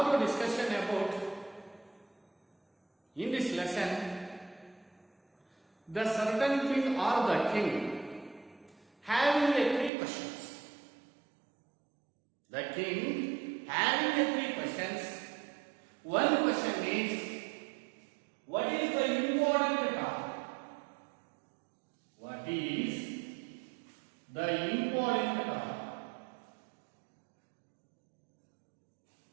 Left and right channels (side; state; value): left; drops out; at 9.9 s